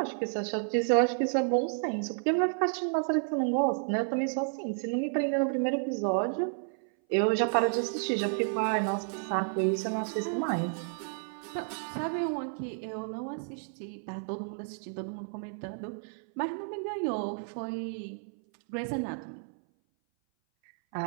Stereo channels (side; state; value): left; silent; 57 dB below the other